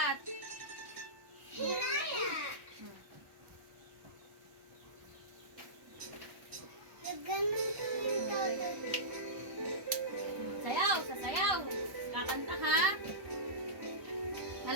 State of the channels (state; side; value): late; left; 1.1 ms